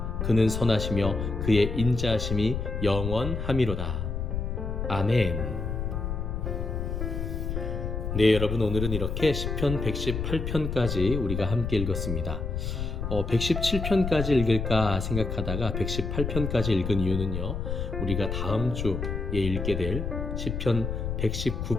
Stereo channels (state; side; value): noise; left; rumble, 3 dB below the sound